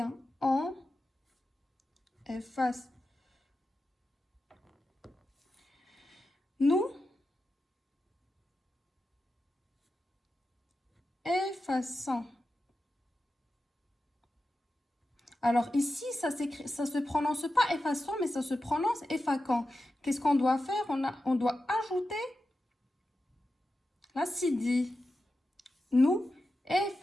on efface. Nous effaçons. Alors ici, ça se prononce pas effaçant, mais ça se prononce effaquant. Qu'est-ce qu'on doit faire? On doit ajouter la cédille. Nous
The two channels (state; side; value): normal; both; correlation 0.91